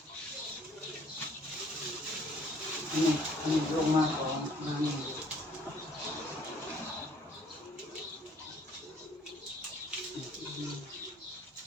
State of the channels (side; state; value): both; normal; correlation 0.59